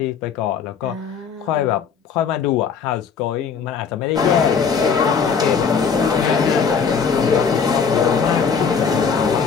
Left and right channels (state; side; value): quieter; right; 6.2 dB